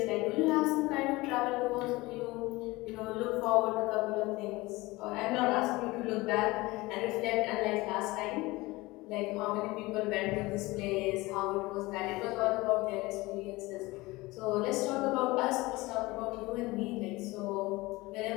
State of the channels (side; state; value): right; quieter; 21.2 dB